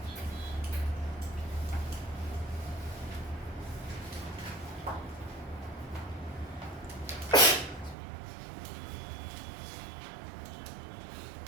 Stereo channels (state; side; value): drops out; left; at 8.0 s